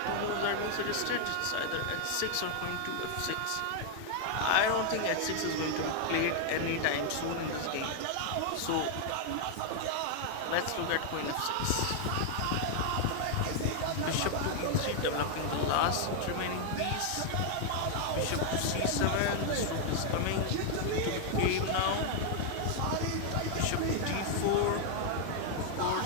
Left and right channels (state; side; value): different; both; correlation 0.00